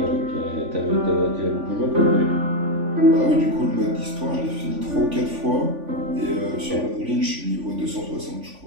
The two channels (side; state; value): left; late; 3.5 ms